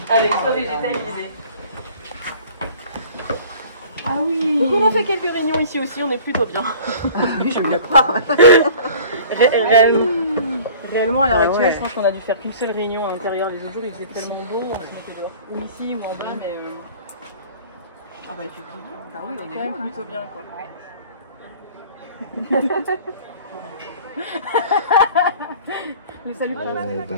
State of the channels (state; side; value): inverted; both; correlation -0.46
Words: avec toit végétalisé. Ah oui. Donc on a fait quelques réunions ici aussi, on est plutôt bien. Oui, je me le crois. Réellement, à l'heure actuelle, je pense qu'on a dû faire qu'une seule réunion à l'intérieur. Les autres jours, il faisait tellement beau, on se mettait dehors. Ou ici, ou en bas, mais... Ah bah effectivement. Bah oui, on est quand même bien, plutôt bien, quoi. Ouais.